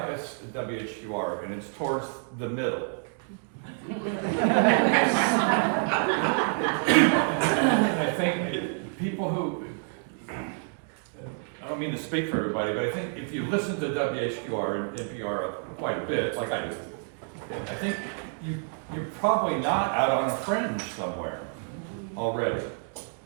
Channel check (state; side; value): silent; left; 56 dB below the other